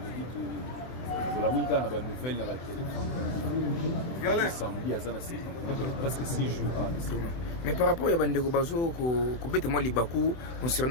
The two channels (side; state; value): right; late; 24 ms